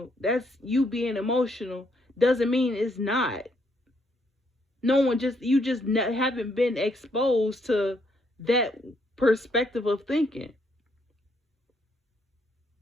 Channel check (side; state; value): both; normal; correlation 0.73